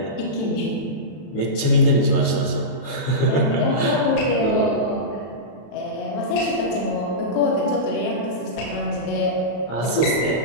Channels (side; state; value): right; late; 32 ms